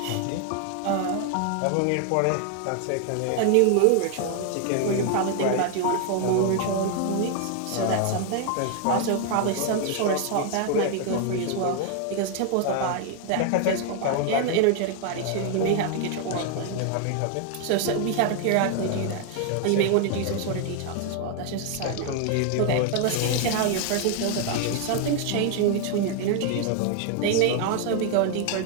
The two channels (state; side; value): different; both; correlation 0.00